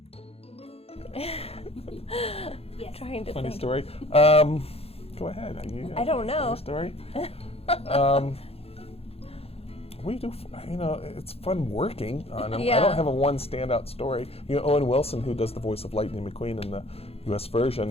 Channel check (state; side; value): late; right; 0.29 ms